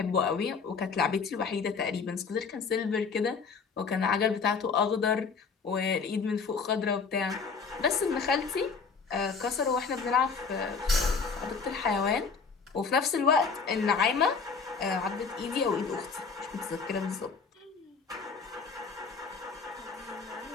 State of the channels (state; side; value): quieter; right; 5.2 dB